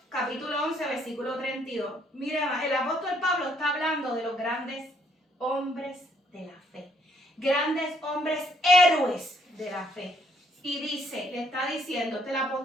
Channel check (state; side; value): normal; both; correlation 0.69